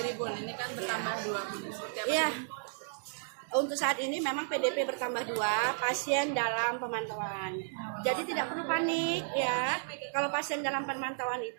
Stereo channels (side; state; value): left; silent; digital silence